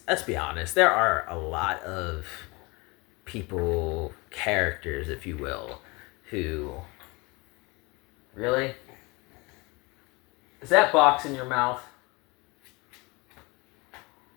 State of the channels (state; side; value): quieter; right; 25.9 dB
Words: be honest, there are a lot of people, characters, if you will, who... Really? Is that box in your mouth?